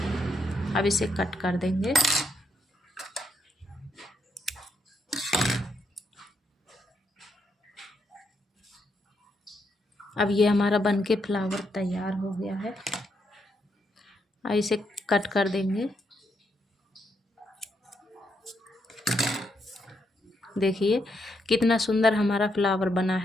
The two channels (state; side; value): normal; both; correlation 0.78